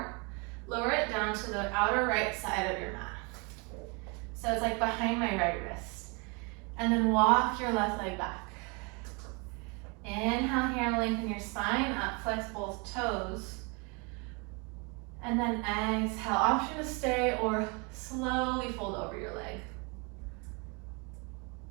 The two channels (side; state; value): left; quieter; 31.3 dB